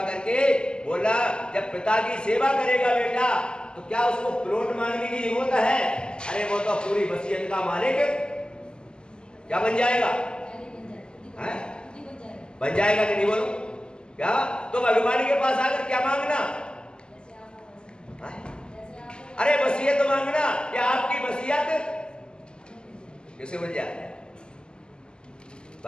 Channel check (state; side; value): late; right; 0.048 ms